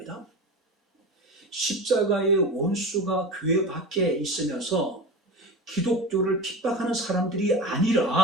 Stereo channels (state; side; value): normal; both; correlation 0.28